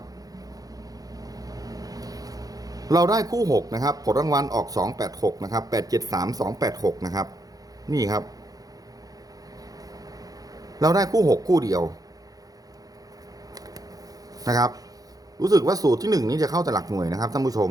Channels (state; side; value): late; left; 0.18 ms